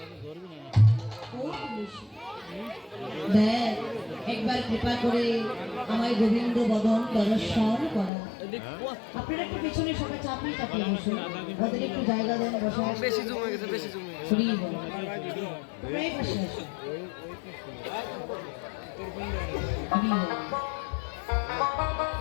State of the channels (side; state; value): right; drops out; at 8.1 s